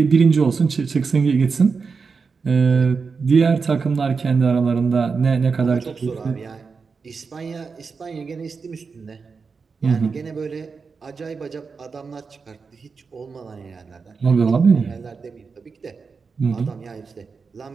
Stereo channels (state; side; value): quieter; left; 5.1 dB